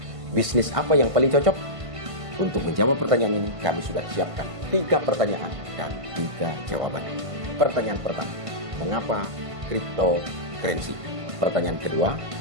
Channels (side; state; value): left; late; 1.5 ms